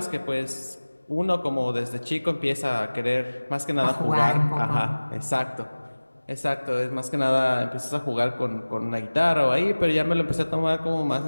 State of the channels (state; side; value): inverted; both; correlation -1.00